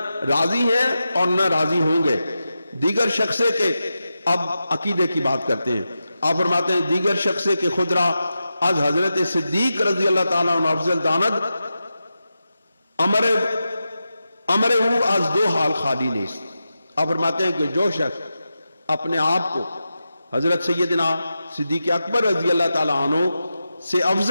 راضی ہیں اور نہ راضی ہوں گے۔ دیگر شخصے کے، اب عقیدے کی بات کرتے ہیں، آپ فرماتے ہیں دیگر شخصے کے خدرہ از حضرت صدیق رضی اللہ تعالیٰ عنہ افضل داند امر او از دو حال خالی نیست۔ آپ فرماتے ہیں کہ جو شخص اپنے آپ کو حضرت سیدنا صدیق اکبر رضی اللہ تعالیٰ عنہ سے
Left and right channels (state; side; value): inverted; both; correlation -0.90